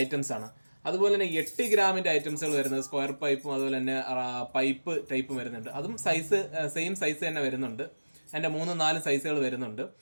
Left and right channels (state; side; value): inverted; both; correlation -1.00